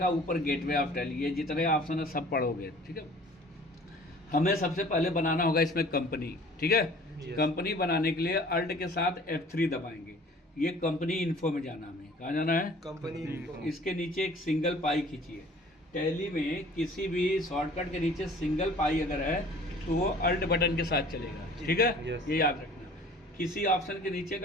ऊपर गेटवे ऑफ टैली, ये जितने ऑप्शन है सब पढ़ोगे, ठीक है। हमें सबसे पहले बनाना होगा इसमें कंपनी, ठीक है। कंपनी बनाने के लिए अल्ट के साथ F3 दबाएंगे। ये कंपनी इन्फो में जाना, हमें कहाँ जाना है? Company info. इसके नीचे एक सिंगल पाई खींचिए। टैली में किसी भी शॉर्टकट के नीचे सिंगल पाई अगर है तो वो अल्ट बटन के साथ चलेगा, ठीक है। ये याद रखना। किसी ऑप्शन के नीचे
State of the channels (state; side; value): normal; both; correlation 0.49